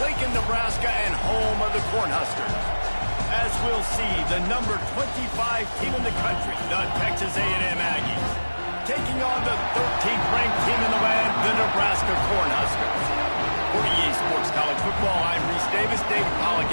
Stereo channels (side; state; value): both; inverted; correlation -1.00